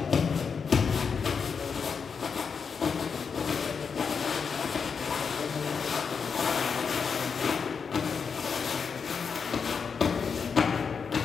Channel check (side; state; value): right; quieter; 5.9 dB